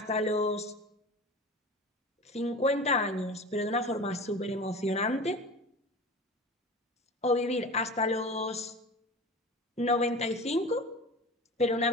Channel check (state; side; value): normal; both; correlation 0.35